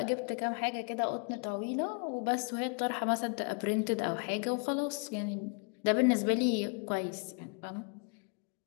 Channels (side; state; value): right; quieter; 39.0 dB